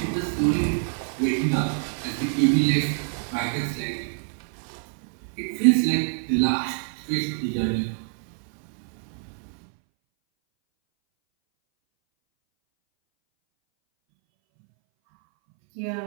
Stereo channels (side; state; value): left; silent; 60 dB below the other